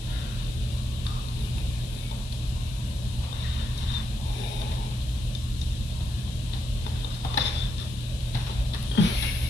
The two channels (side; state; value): left; noise; hiss, 17 dB below the sound